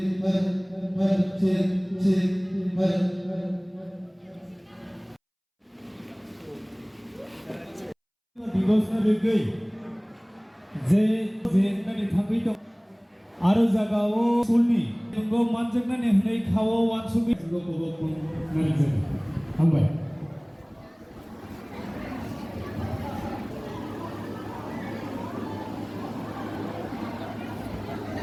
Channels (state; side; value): identical; both; correlation 1.00